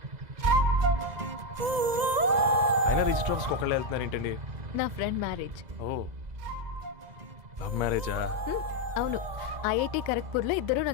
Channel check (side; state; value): left; late; 2.0 ms